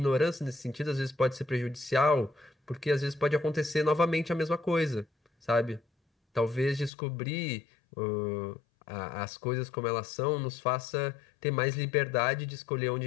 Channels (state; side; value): drops out; right; at 6.9 s